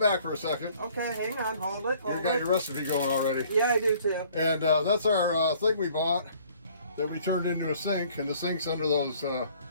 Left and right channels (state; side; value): inverted; both; correlation -0.57